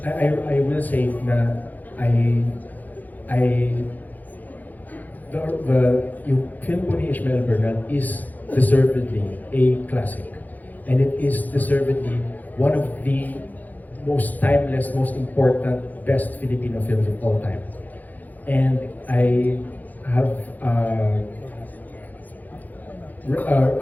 I will say na yung film po ni Ishmael Bernal is deservedly a classic, and it is deservedly one of the most timeless, most important, best Filipino films of all time. And I have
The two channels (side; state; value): right; late; 0.082 ms